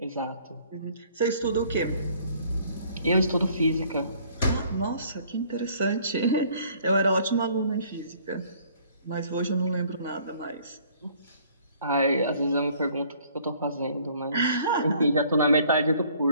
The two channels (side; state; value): both; inverted; correlation -0.58